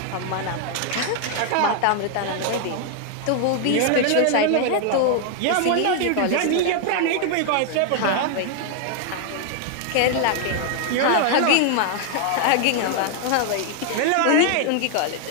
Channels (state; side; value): different; both; correlation 0.00